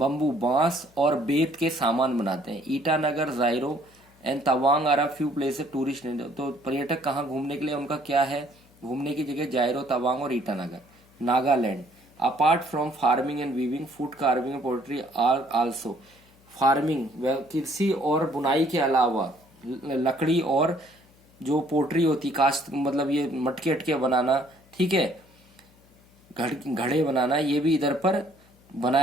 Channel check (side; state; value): left; noise; hum, 29 dB below the sound